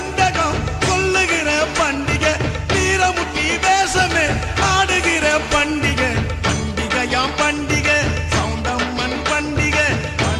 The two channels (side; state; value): both; identical; correlation 1.00